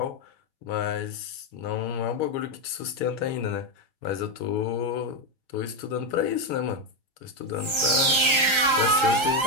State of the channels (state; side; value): late; left; 1.3 ms